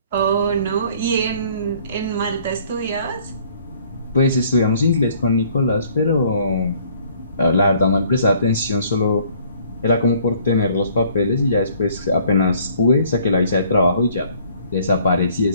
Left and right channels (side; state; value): both; inverted; correlation -0.59